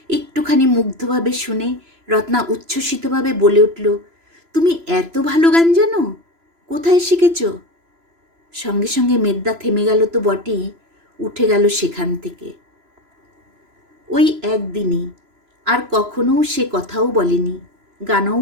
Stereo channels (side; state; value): left; late; 3.0 ms